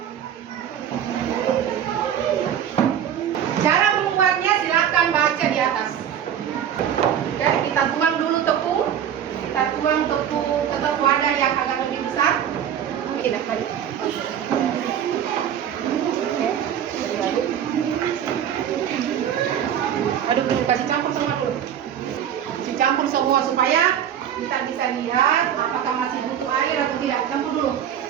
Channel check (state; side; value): quieter; left; 9.4 dB